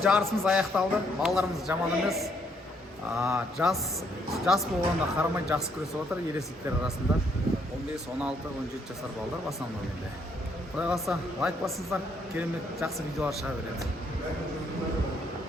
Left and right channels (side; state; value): both; normal; correlation 0.71